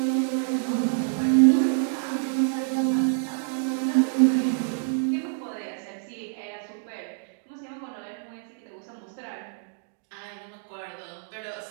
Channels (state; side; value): silent; left; digital silence